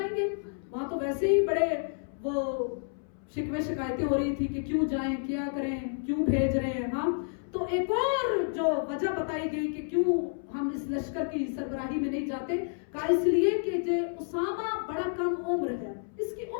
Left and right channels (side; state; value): right; silent; 58 dB below the other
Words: گے؟ وہاں تو ویسے ہی بڑے وہ شکوے شکایتیں ہو رہی تھی کہ کیوں جائیں، کیا کریں، کیوں بھیج رہے ہیں، ہاں۔ تو ایک اور جو وجہ بتائی گئی کہ کیوں ہم اس لشکر کی سربراہی میں نہیں جاتے، کہا اس لیے کہ جو اسامہ بڑا کم عمر ہے، اس کی